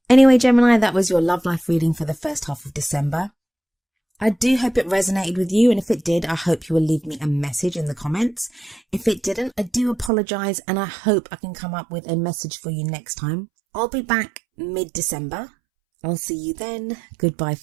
Anyway, Gemini, that was your love life reading for the first half of December. I do hope it resonated with you, and if it did, I hope you will leave me a message in the comments. If it didn't, I do apologise, and I hope I can come up with a message for you next time. I'll be back mid-December. I'll see you then. Goodbye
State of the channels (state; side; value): drops out; left; at 10.1 s